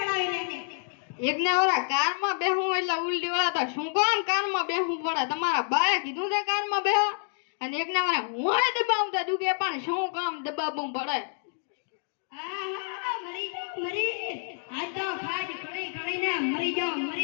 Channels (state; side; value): silent; right; 59 dB below the other